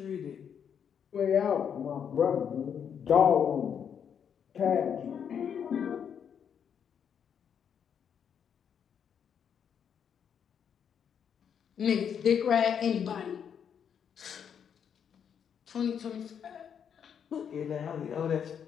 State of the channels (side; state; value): right; quieter; 7.9 dB